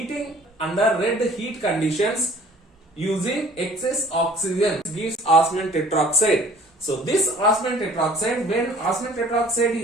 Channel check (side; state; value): both; normal; correlation 0.52